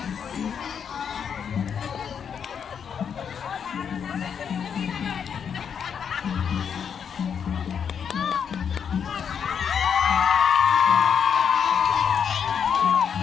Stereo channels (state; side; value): quieter; right; 7.4 dB